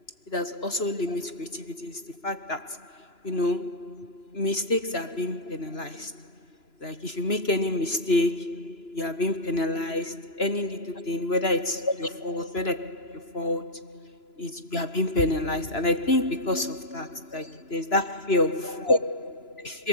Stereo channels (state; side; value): late; right; 3.0 ms